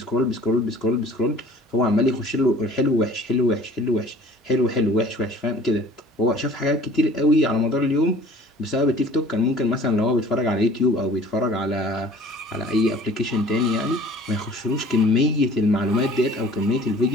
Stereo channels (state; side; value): normal; both; correlation 0.48